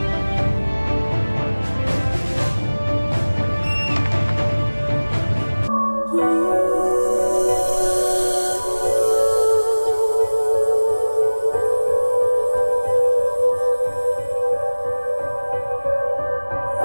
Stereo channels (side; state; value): both; inverted; correlation -1.00